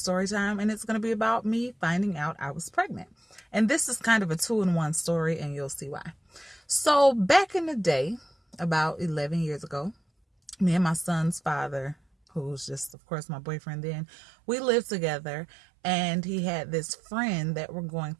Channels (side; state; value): left; drops out; at 13.0 s